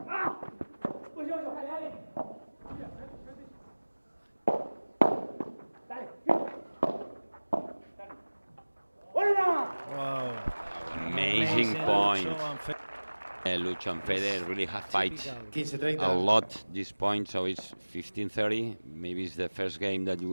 Wow. Amazing point. Lucho and Fede really have fight 15-30. a lot this point, so it's 15-30. Maybe it's the first game that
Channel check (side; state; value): both; inverted; correlation -1.00